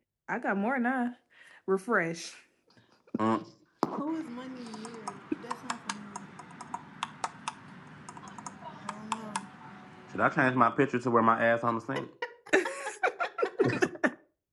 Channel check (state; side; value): identical; both; correlation 1.00